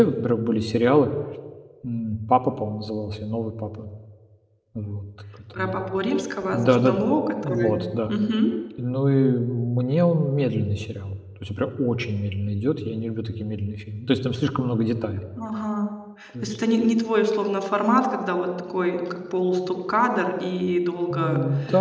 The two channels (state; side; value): identical; both; correlation 1.00